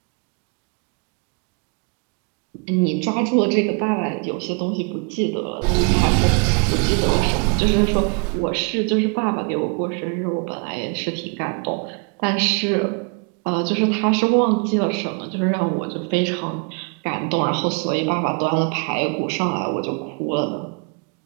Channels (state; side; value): quieter; left; 35.8 dB